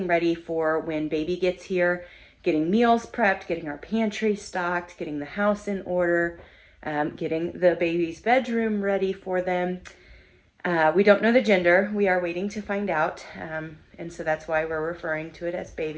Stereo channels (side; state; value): both; identical; correlation 1.00